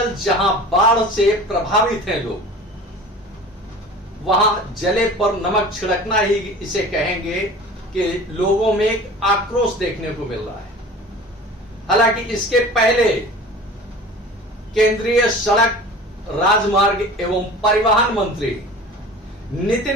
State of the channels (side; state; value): both; normal; correlation 0.40